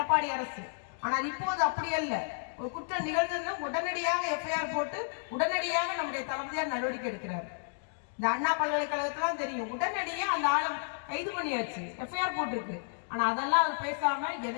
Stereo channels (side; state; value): right; silent; digital silence